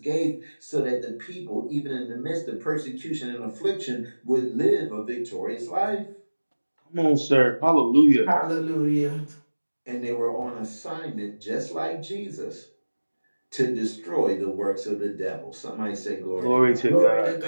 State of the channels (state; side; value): inverted; both; correlation -1.00